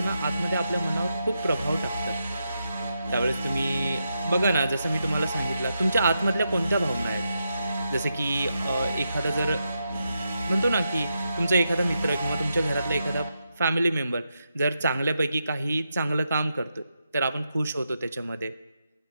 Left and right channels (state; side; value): inverted; both; correlation -0.85